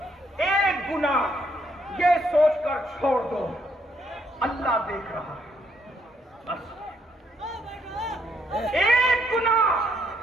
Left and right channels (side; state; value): both; normal; correlation 0.73